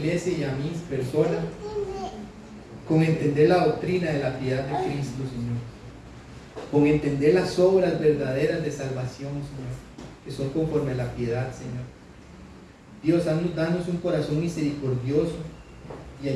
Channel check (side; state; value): both; identical; correlation 1.00